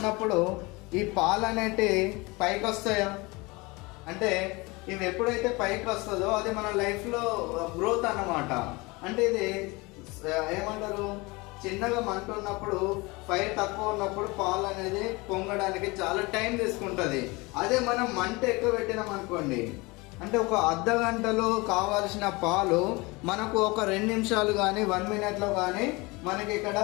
ఈ పాలు అనేటి పైకి వస్తాయా? అంటే ఇవి ఎప్పుడైతే పైకి వస్తుందో అది మన లైఫ్లో గ్రోత్ అన్నమాట. అంటే ఇది ఏమంటారు, చిన్నగా మంట ఉన్నప్పుడు, ఫైర్ తక్కువ ఉన్నప్పుడు పాలు అనేది పొంగడానికి చాలా టైం తీసుకుంటుంది. అదే మనం మంట ఎక్కువ పెట్టినాం అనుకోండి, అంటే ఒక అర్ధ గంటలో కావాల్సిన పాలు మనకు ఒక 2 నిమిషాలు కానీ 1 మినిట్లో కానీ మనకి ఇక్కడ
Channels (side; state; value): right; quieter; 24.8 dB